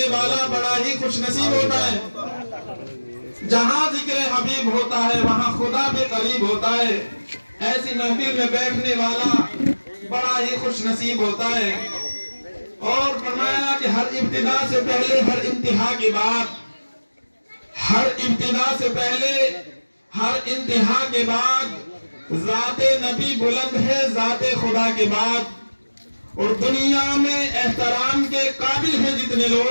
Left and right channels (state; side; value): inverted; both; correlation -1.00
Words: والا بڑا ہی خوش نصیب ہوتا ہے. جہاں ذکر حبیب ہوتا ہے وہاں خدا بھی قریب ہوتا ہے. ایسی محفل میں بیٹھنے والا بڑا ہی خوش نصیب ہوتا ہے. اور فرمایا کہ ہر ابتدا سے پہلے ہر انتہا کے بعد، ہر ابتدا سے پہلے ہر انتہا کے بعد ذات نبی بلند ہے ذات خدا کے بعد. اور دنیا میں احترام کے قابل ہیں جتنے